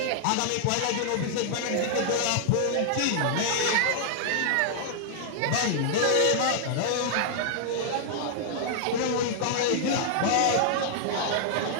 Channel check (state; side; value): different; both; correlation -0.01